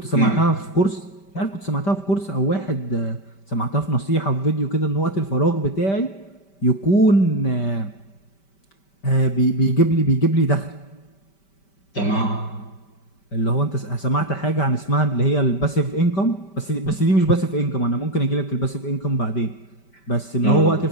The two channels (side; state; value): right; late; 5.1 ms